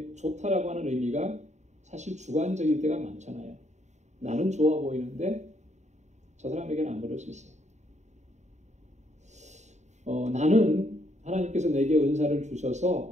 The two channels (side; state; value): left; late; 0.34 ms